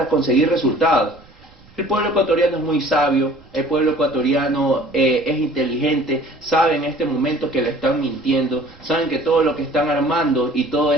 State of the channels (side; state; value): right; noise; rumble, 27 dB below the sound